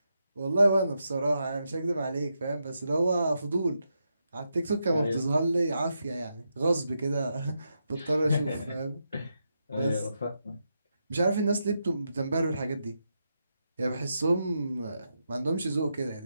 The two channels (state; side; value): inverted; both; correlation -0.84